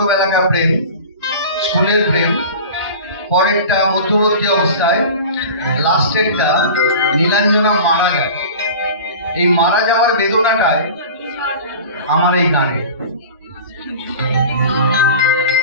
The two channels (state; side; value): inverted; both; correlation -0.36